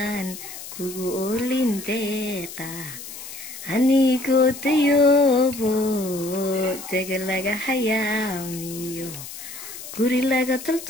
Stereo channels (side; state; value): left; noise; hiss, 12 dB below the sound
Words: kugu oolin deeqa anigoo dayoobo dega laga hayaamiyo guri laga